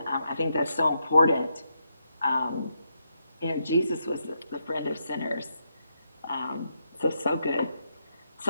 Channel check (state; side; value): inverted; both; correlation -0.82